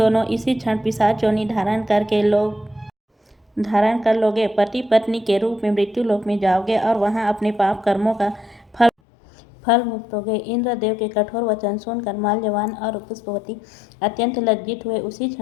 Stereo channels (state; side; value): drops out; right; at 8.9 s